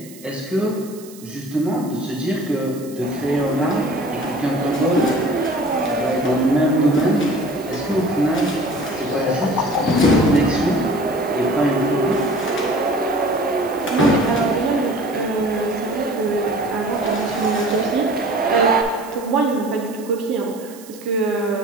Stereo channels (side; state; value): right; noise; hiss, 20 dB below the sound